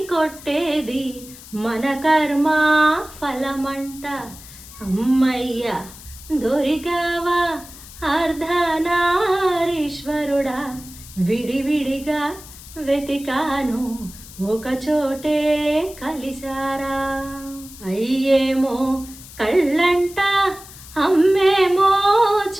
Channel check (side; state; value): left; noise; hiss, 17 dB below the sound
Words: కొట్టేది మన కర్మ ఫలమంట. అమ్మయ్య దొరికావా అర్ధనారీశ్వరుడా, విడివిడిగా వెతికాను ఒకచోటే కలిసారా. అయ్యేమో కళ్ళంట, అమ్మేమో